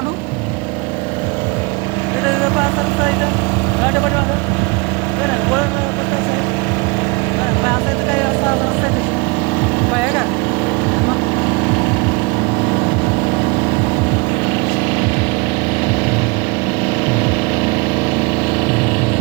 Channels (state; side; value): quieter; left; 27.6 dB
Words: तिथं पाच रस्ता इथं गाडी पाठी माझं असं इथं काही असा रस्ता आहे आहे का.